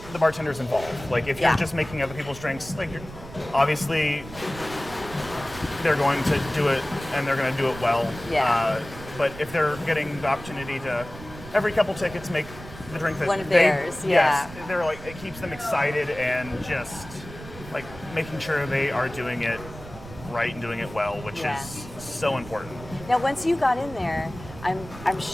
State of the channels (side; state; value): right; noise; rumble, 15 dB below the sound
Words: the bartenders involved. Like if you're just making other people's drinks, like obviously they're going to do it and they're going to do it well. Yeah. But if they're getting the opportunity to every couple tickets make the drink that one of theirs, yes, they're like, it keeps them excited and just like making sure they are doing it right and doing it well, which is so important. Now, once you got in there, I'm